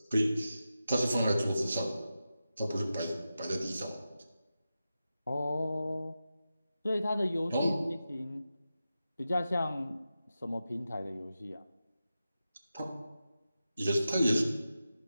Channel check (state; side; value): inverted; both; correlation -0.91